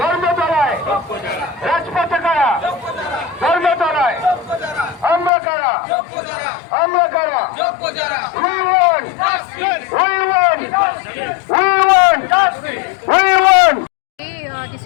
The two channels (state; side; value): drops out; right; at 5.3 s